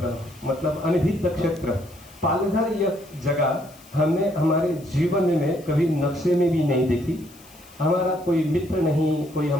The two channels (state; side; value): noise; left; hiss, 24 dB below the sound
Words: मतलब अनभिज्ञ क्षेत्र, पालघर यह जगह हमने हमारे जीवन में कभी नक्शे में भी नहीं देखी। हमारा कोई मित्र नहीं, कोई